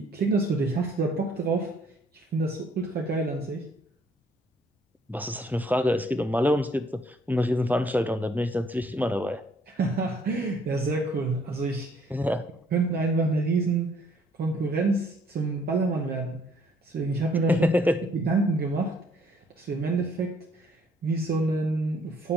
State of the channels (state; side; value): normal; both; correlation 0.64